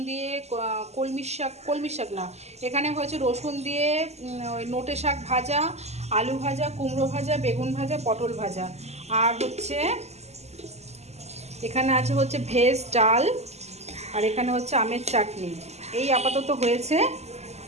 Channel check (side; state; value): left; late; 0.32 ms